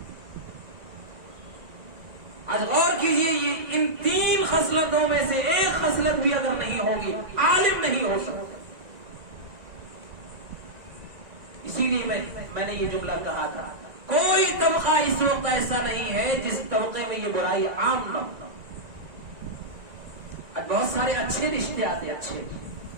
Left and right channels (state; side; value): late; left; 1.9 ms